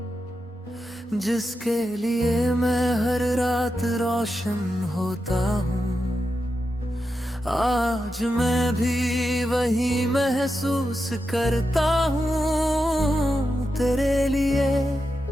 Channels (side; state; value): both; normal; correlation 0.88